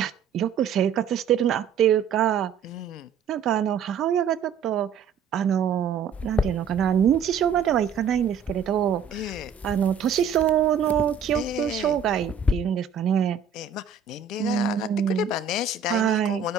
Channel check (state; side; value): quieter; left; 6.8 dB